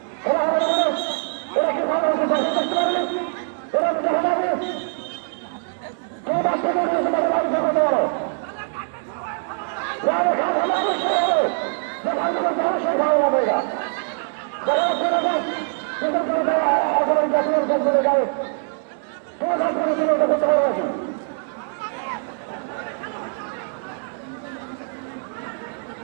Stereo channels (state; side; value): silent; left; 63 dB below the other